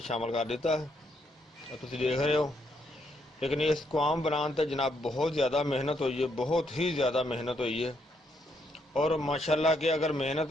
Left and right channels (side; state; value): both; normal; correlation 0.75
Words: शामिल कर दिता है, तुसीं देख रहे हो। लेकिन इस कवाम बनाने ते जनाब बहुत ज़्यादा मेहनत हुई है, बहुत ही ज़्यादा मेहनत हुई है। और माशाल्लाह के अगर